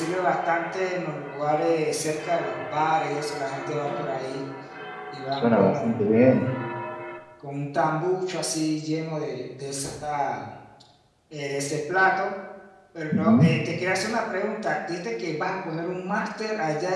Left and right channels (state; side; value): identical; both; correlation 1.00